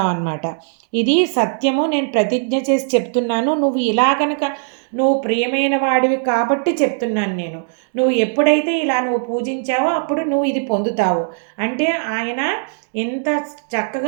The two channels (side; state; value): left; silent; digital silence